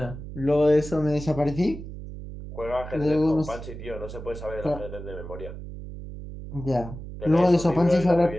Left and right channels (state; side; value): noise; right; hum, 11 dB below the sound